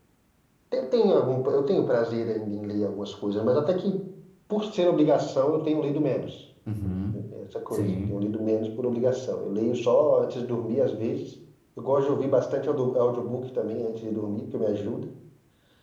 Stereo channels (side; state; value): both; identical; correlation 1.00